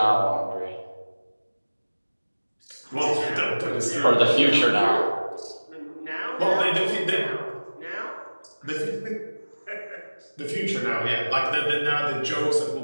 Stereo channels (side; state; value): both; inverted; correlation -1.00